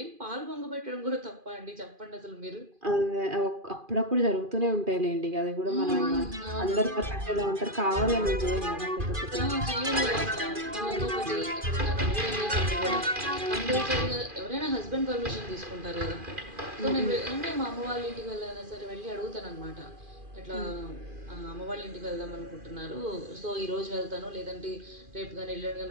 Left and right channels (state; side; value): late; left; 2.4 ms